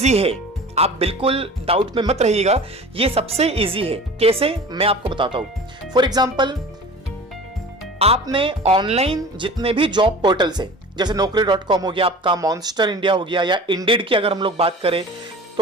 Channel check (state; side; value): normal; both; correlation 0.39